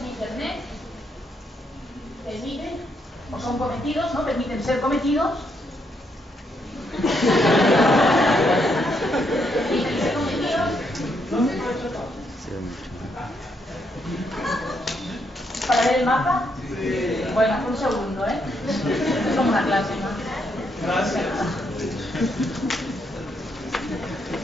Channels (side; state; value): both; normal; correlation 0.76